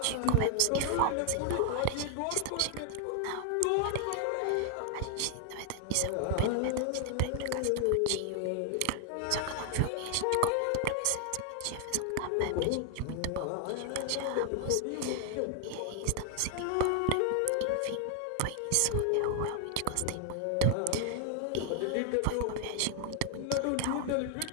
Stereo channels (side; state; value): both; different; correlation 0.00